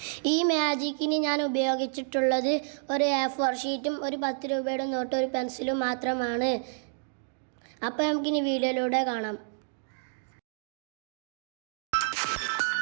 ഈ മാജിക്കിന് ഞാൻ ഉപയോഗിച്ചിട്ടുള്ളത് ഒരു A4 ഷീറ്റും ഒരു 10 രൂപയുടെ നോട്ടും ഒരു പെൻസിലും മാത്രമാണ്. അപ്പോൾ നമുക്കിനി വീഡിയോയിലൂടെ കാണാം.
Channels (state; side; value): silent; left; digital silence